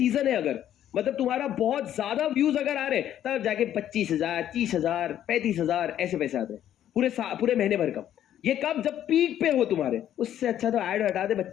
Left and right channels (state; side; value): quieter; right; 11.1 dB